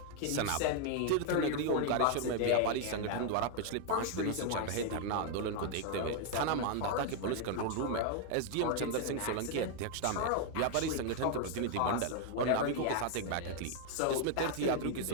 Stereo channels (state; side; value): different; both; correlation 0.00